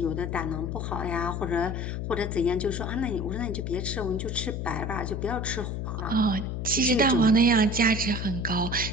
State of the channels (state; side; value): noise; left; hum, 3 dB below the sound